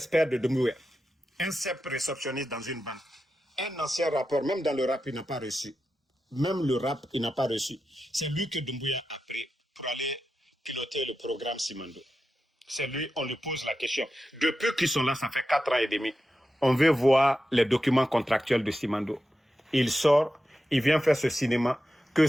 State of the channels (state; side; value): normal; both; correlation 0.90